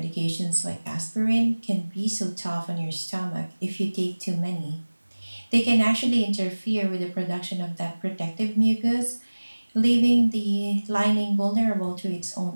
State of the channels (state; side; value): inverted; both; correlation -1.00